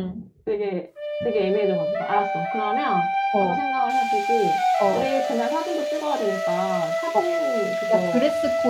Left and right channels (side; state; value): both; identical; correlation 1.00